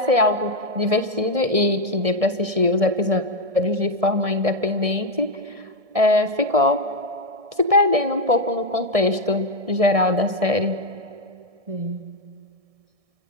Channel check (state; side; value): late; left; 1.6 ms